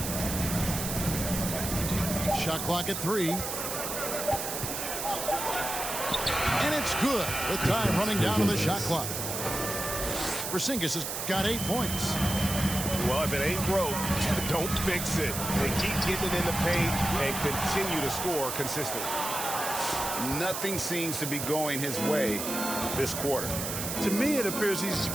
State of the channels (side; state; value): right; noise; hiss, 4 dB below the sound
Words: Shot clock at 3. And it's good. The time running down to the shot clock. Porzingis has got 8 points. Well, if it ain't broke, don't fix it. They keep getting it in the paint and continue to score consistently. Nothing seems to be going his way this quarter. To me, it appears he's